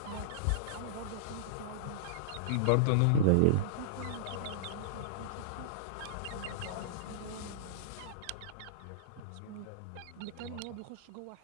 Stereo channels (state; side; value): different; both; correlation -0.02